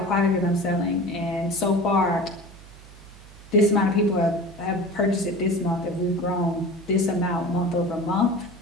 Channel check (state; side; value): noise; right; hum, 20 dB below the sound